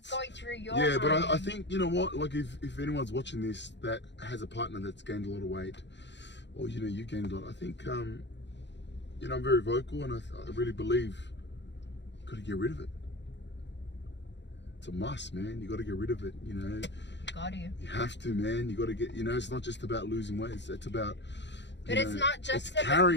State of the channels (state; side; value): late; right; 0.52 ms